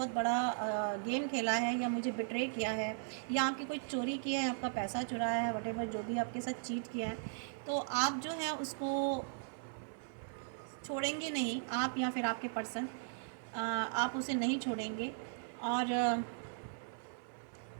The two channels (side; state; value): left; silent; 53 dB below the other